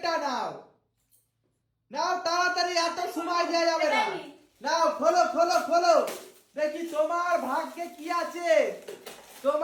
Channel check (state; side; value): identical; both; correlation 1.00